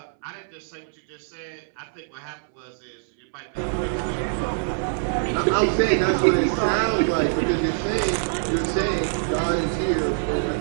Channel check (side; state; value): left; silent; 62 dB below the other